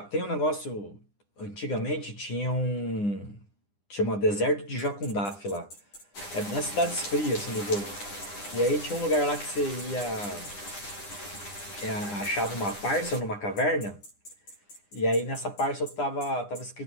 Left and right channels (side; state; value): right; late; 9.9 ms